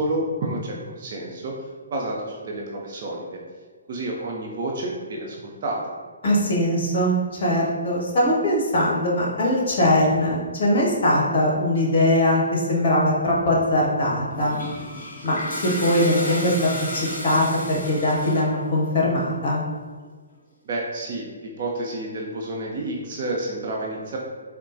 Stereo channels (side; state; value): both; inverted; correlation -0.42